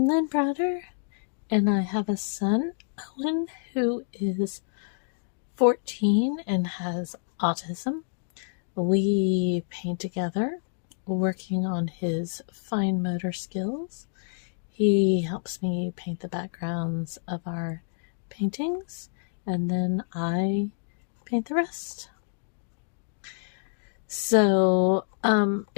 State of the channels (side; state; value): right; silent; digital silence